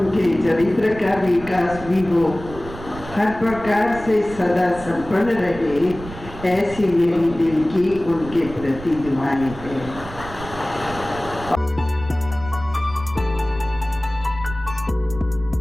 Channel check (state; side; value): noise; right; rumble, 14 dB below the sound